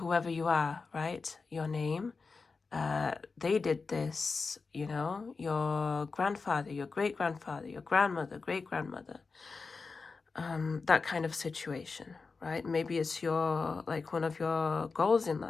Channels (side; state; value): right; quieter; 4.4 dB